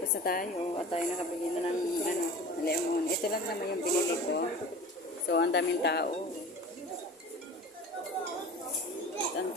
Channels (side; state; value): both; normal; correlation 0.39